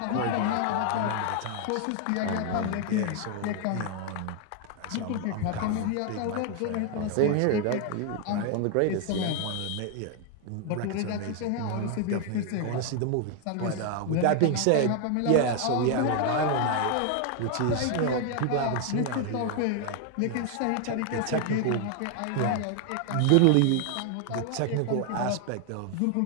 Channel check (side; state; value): both; different; correlation 0.00